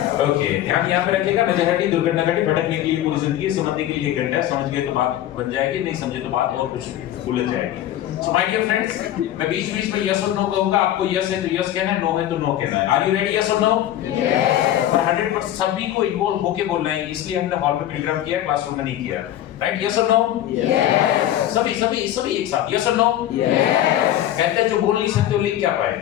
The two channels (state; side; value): quieter; right; 12.5 dB